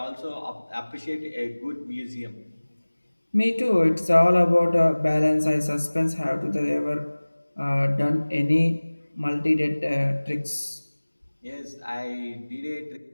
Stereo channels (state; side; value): inverted; both; correlation -1.00